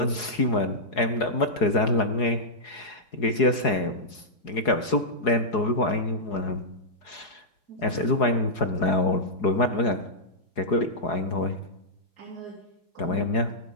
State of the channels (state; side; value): late; right; 4.8 ms